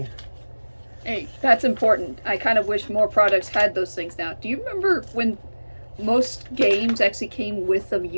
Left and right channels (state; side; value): inverted; both; correlation -1.00